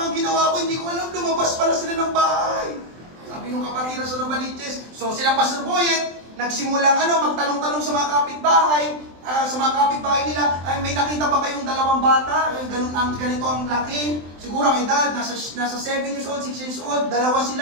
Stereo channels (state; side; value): late; left; 23 ms